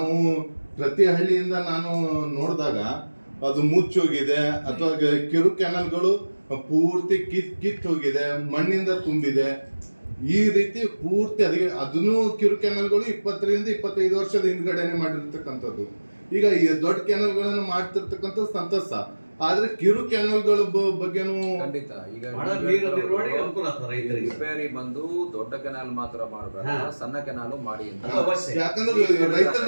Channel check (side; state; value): both; inverted; correlation -1.00